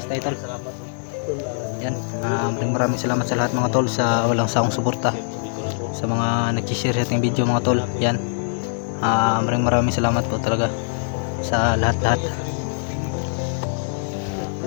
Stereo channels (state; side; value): silent; right; digital silence